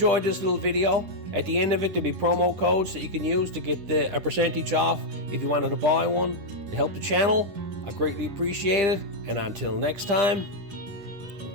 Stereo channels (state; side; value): late; left; 10 ms